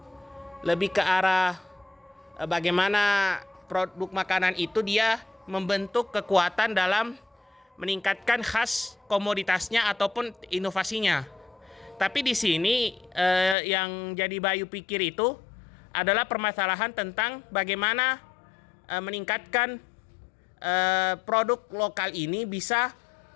lebih ke arah bagaimana produk makanan itu dia membentuk kekuatan dalam meningkatkan khas komoditasnya ataupun inovasinya. Tapi di sini yang jadi Bayu pikir itu adalah permasalahan tentang bagaimana meningkatkan produk lokal ini bisa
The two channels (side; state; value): right; drops out; at 13.6 s